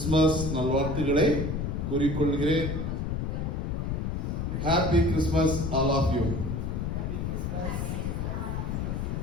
நல்வாழ்த்துக்களை கூறிக்கொள்கிறேன். Happy Christmas all of you.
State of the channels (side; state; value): left; noise; rumble, 1 dB below the sound